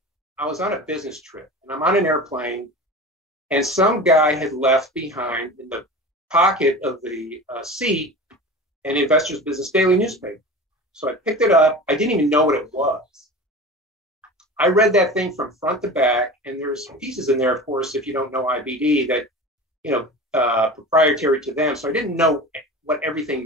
a business trip, and I'm on an airplane, and some guy had left behind in the pocket of the seat an Investor's Business Daily newspaper. So I picked it up. I didn't even know what it was. I read that thing from front to back, and there's pieces in there, of course, if you don't know IBD, that proprietary to them. So I didn't know what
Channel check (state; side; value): normal; both; correlation 0.34